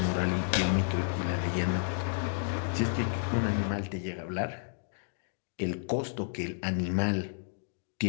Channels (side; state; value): right; silent; digital silence